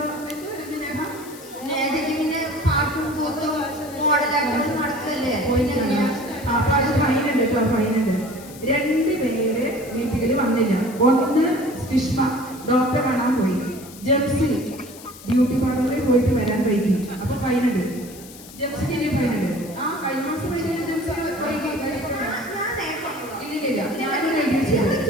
നേഹ നേഹയ്ക്ക് പാട്ടും കൂത്തും മോഡലായിട്ട് നടക്കല്ലേ. അപ്പൊ അത് ഫൈൻ ഉണ്ട് കേട്ടോ, ഫൈൻ ഉണ്ട്. 2 പേര് മീറ്റിങ്ങിൽ വന്നില്ല. ഒന്ന് സ്റ്റിഷ്മ ഡോക്ടറെ കാണാൻ പോയി. ജംസി ബ്യൂട്ടി പാർലറിൽ പോയിട്ട് വരാൻ വൈകി. അപ്പൊ ഫൈൻ ഉണ്ട്. ജംസിക്ക് ഇനി ഫൈൻ ഉണ്ട്. കഴിഞ്ഞ മാസം വൈകി ജംസി വൈകി. ഇല്ലില്ല, ഞാനൊരു ഐഡിയ ചെയ്തു.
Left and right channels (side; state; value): left; noise; hiss, 18 dB below the sound